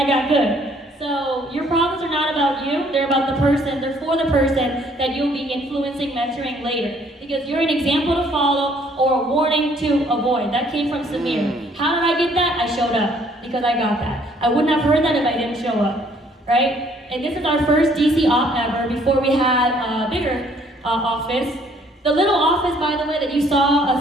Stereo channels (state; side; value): normal; both; correlation 0.62